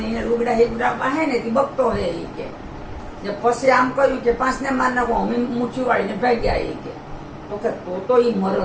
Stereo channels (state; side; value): identical; both; correlation 1.00